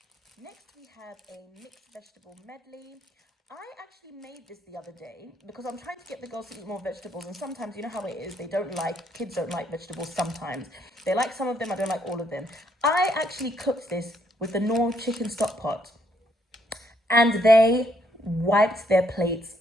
Next, we have a mixed vegetable medley. I actually made this the other day because I'm trying to get the girls to eat more vegetables, and sometimes, you know how it is, kids don't like vegetables sometimes. They like some of them, I don't like all of them. I actually cooked this with the Knorr chicken stock pot, and they wiped their plates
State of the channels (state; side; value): normal; both; correlation 0.71